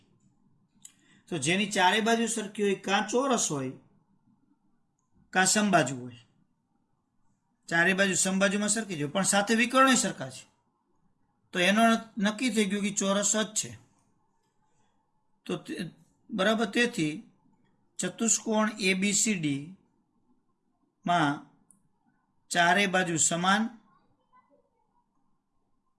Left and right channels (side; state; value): both; identical; correlation 1.00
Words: તો જેની ચારે બાજુ સરખી હોય કાં ચોરસ હોય કાં સમબાજુ હોય. ચારે બાજુ સમબાજુમાં સરખી છે, પણ સાથે વિકર્ણ સરખા છે, તો એનો નક્કી થઈ ગયું કે ચોરસ જ છે. તો બરાબર, તેથી ચતુષ્કોણ ABCD માં ચારે બાજુ સમાન